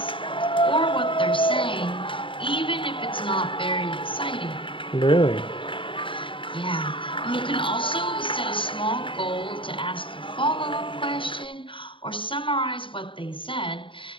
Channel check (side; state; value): right; late; 0.25 ms